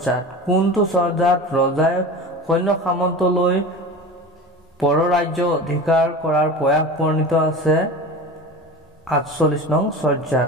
কোনটো চৰ্যাত ৰজাই সৈন্য সামন্তলৈ পৰৰাজ্য অধিকাৰ কৰাৰ প্ৰয়াস বৰ্ণিত আছে? 48 নং চৰ্যাত।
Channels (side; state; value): both; normal; correlation 0.33